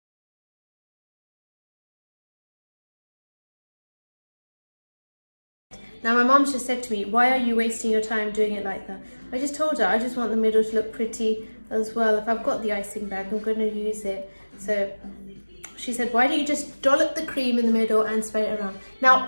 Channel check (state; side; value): inverted; both; correlation -1.00